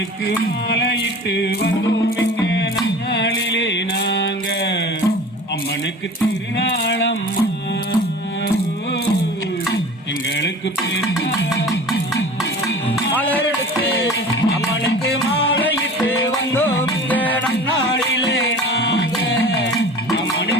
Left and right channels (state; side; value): normal; both; correlation 0.40